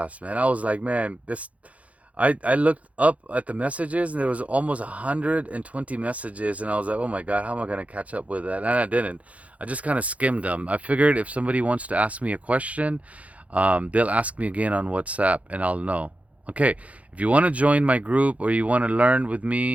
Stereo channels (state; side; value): late; left; 0.067 ms